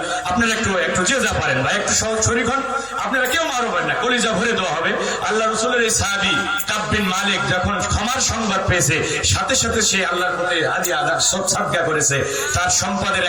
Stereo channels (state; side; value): noise; left; hum, 25 dB below the sound